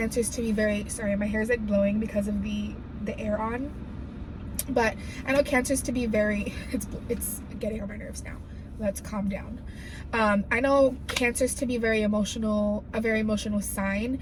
to be very, sorry, my hair is like blowing because of the air on. But I know Cancers to be very, it's getting on my nerves now. Let's calm down. I know Cancers to be very emotional, a very emotional sign.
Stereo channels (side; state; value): both; identical; correlation 1.00